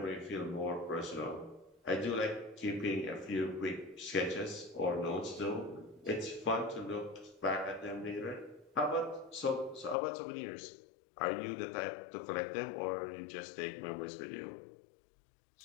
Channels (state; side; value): drops out; right; at 10.0 s